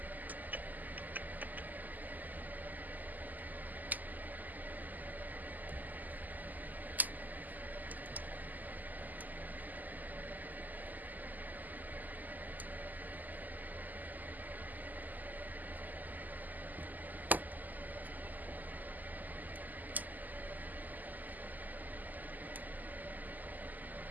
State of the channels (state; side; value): late; left; 0.083 ms